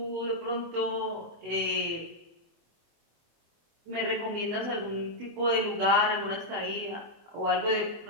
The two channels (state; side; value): late; left; 24 ms